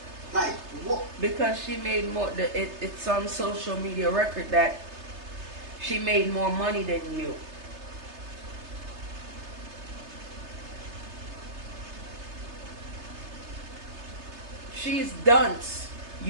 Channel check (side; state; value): left; late; 3.3 ms